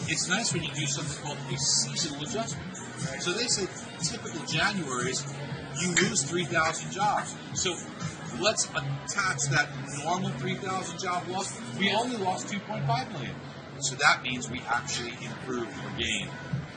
it's nice when you do something called a seasonal adjustment. So they say typical Januaries, you lose 3,000 jobs. So let's attach that normal 3,000 job loss. We only lost 2.5 million. So that means we actually improved or gained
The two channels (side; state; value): both; identical; correlation 1.00